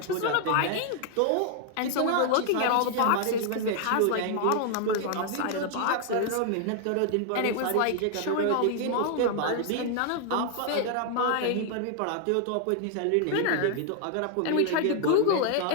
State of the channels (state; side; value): different; both; correlation 0.00